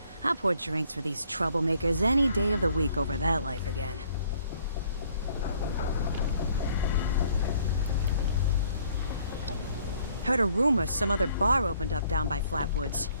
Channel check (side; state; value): both; inverted; correlation -0.62